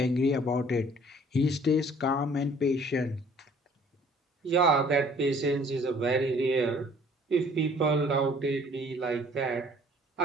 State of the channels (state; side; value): normal; both; correlation 0.55